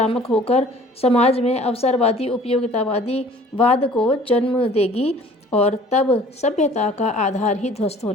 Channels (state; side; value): normal; both; correlation 0.51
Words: होकर समाज में अवसरवादी, उपयोगितावादी वाद को जन्म देगी और तब सभ्यता का आधार ही ध्वस्त